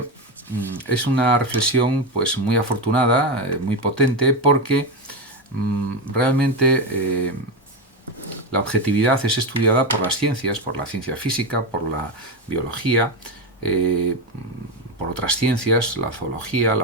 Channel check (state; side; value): normal; both; correlation 0.13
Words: es una reflexión muy afortunada, muy potente, porque realmente la objetividad es estudiada por las ciencias, por la ciencia física, por la biología, por otras ciencias, la zoología,